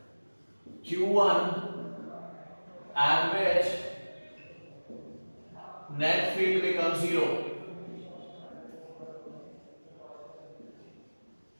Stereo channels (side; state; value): both; inverted; correlation -1.00